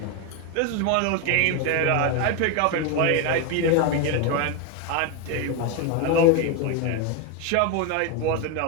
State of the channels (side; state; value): both; different; correlation 0.02